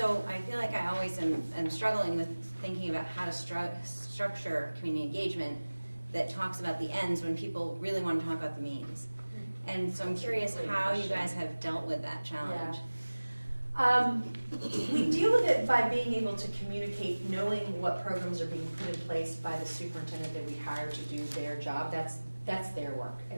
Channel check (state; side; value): inverted; both; correlation -1.00